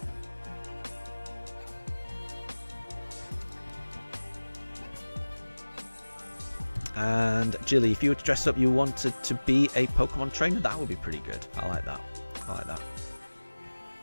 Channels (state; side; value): inverted; both; correlation -1.00